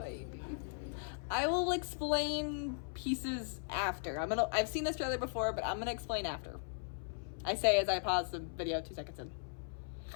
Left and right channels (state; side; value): silent; right; 53 dB below the other